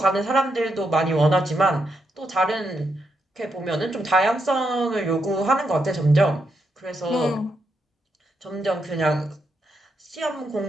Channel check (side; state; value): both; normal; correlation 0.81